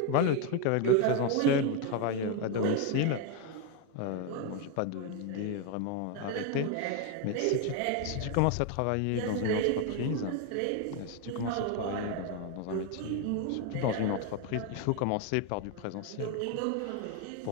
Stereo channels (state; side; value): different; both; correlation 0.02